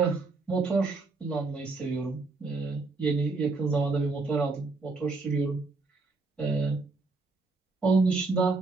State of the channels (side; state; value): left; quieter; 3.8 dB